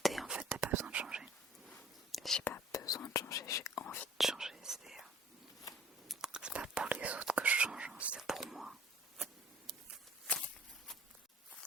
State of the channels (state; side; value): normal; both; correlation 0.51